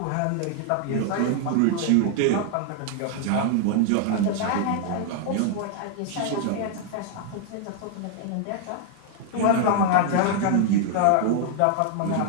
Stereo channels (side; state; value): both; different; correlation 0.00